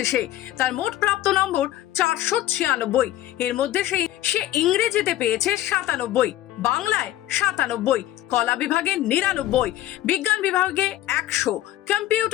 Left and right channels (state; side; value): quieter; right; 14.4 dB